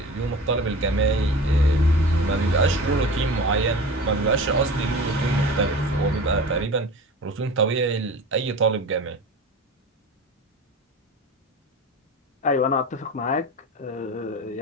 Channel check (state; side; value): normal; both; correlation 0.35